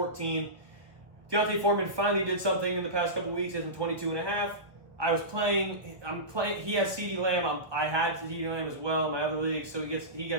Deontay Foreman finally did something in the past couple weeks. Gets him 22.5. I'm playing. He has CeeDee Lamb. I had CeeDee Lamb as well in my other league, so he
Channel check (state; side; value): late; left; 1.1 ms